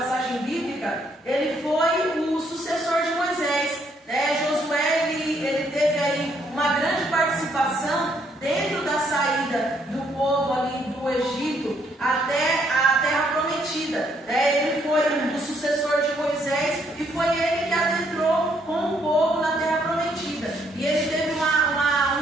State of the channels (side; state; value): both; normal; correlation 0.70